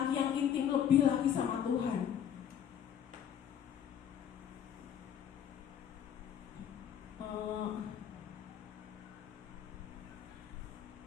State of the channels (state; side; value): quieter; right; 9.1 dB